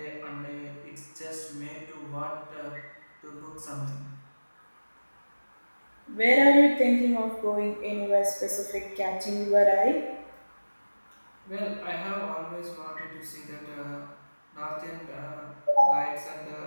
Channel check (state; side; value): inverted; both; correlation -1.00